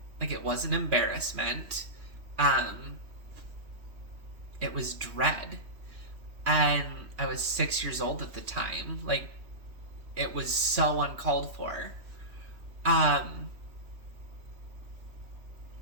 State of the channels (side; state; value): left; late; 3.1 ms